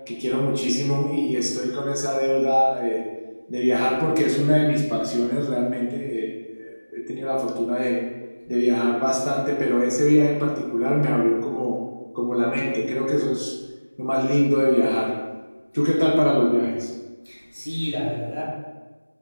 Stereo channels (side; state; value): both; inverted; correlation -1.00